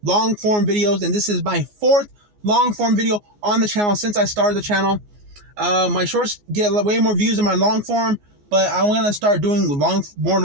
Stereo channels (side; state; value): left; late; 14 ms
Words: long form videos, and this is my 4th long form video on the channel since I started the channel. My shorts get way more views than my long form, but I'm gonna start doing more